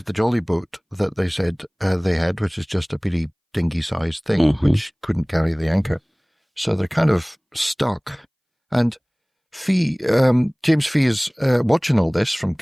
the jolly boat that they said they had, which is just a pretty dinghy-sized thing, which couldn't carry the anchor. So they're kind of stuck. And James Fee is watching all this from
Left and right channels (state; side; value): identical; both; correlation 1.00